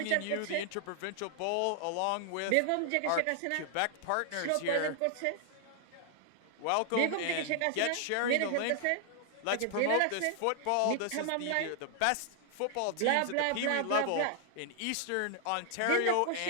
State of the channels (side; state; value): both; different; correlation 0.00